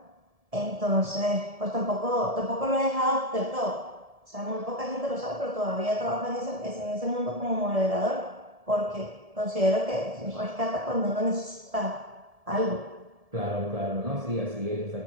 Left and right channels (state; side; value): late; left; 1.7 ms